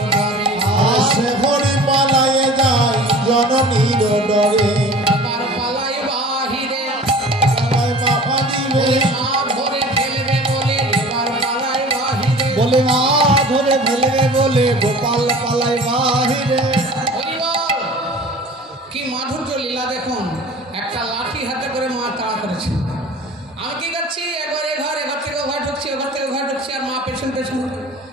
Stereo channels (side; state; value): both; normal; correlation 0.43